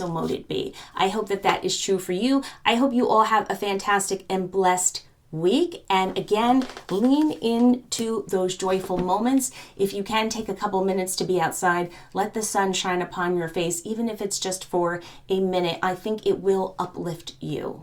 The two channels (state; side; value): identical; both; correlation 1.00